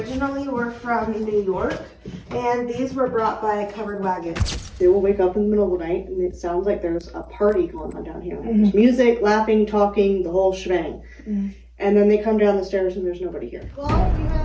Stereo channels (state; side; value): identical; both; correlation 1.00